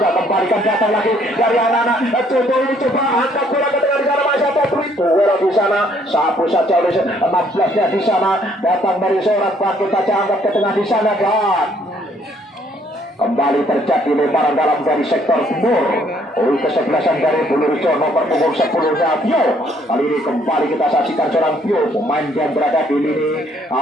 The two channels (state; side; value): normal; both; correlation 0.65